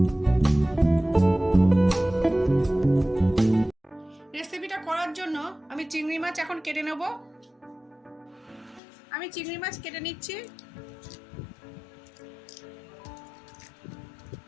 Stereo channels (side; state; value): right; drops out; at 8.8 s